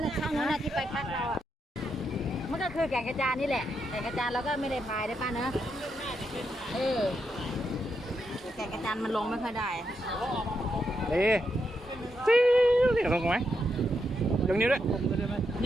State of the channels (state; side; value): normal; both; correlation 0.82